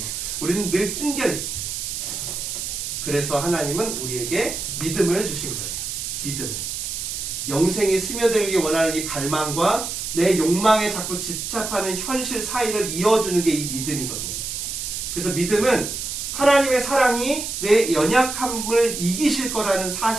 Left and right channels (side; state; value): right; noise; hiss, 5 dB below the sound